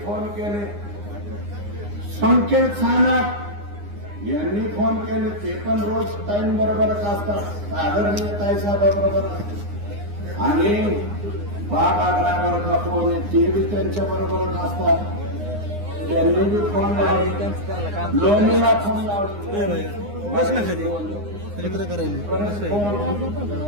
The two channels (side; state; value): left; late; 9.8 ms